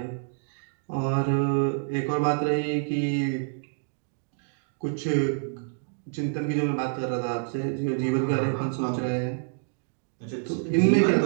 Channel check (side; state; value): left; silent; 60 dB below the other